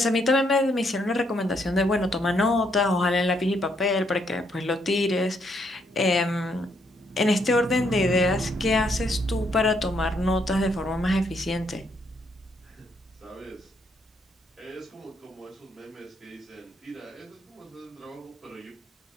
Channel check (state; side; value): normal; both; correlation 0.73